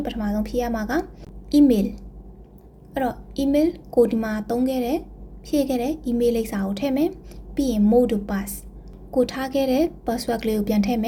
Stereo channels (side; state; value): both; identical; correlation 1.00